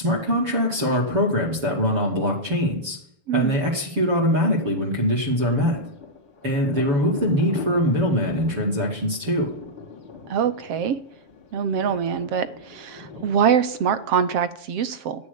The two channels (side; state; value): left; late; 7.0 ms